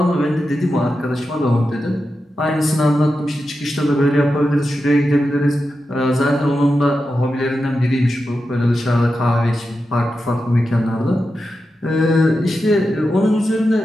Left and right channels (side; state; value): both; normal; correlation 0.90